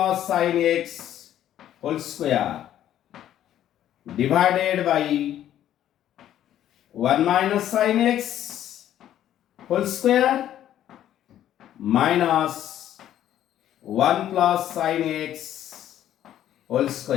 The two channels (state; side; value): quieter; right; 11.6 dB